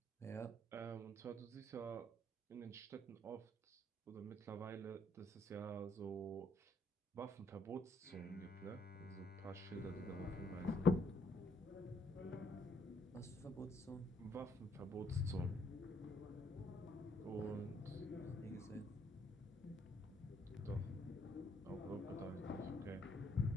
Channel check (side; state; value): both; normal; correlation 0.69